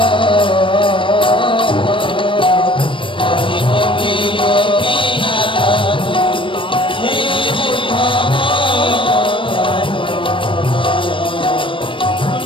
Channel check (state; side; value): late; right; 0.25 ms